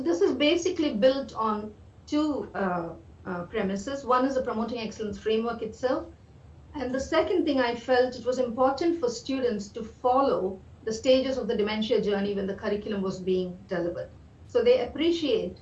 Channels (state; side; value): identical; both; correlation 1.00